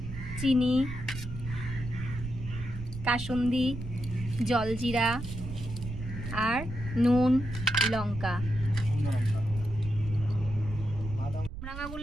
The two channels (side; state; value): right; noise; rumble, 9 dB below the sound